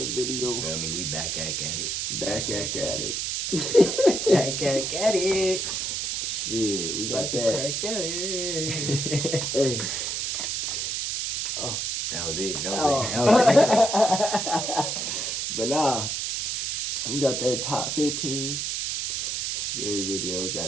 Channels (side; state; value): right; noise; hiss, 1 dB below the sound